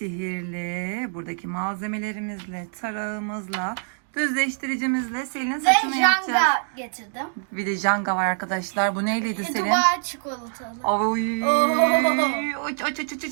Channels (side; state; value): left; silent; digital silence